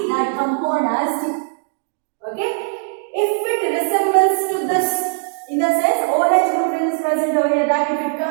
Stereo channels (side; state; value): left; silent; digital silence